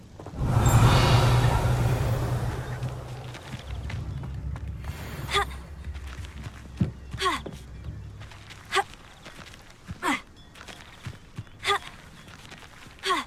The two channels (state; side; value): identical; both; correlation 1.00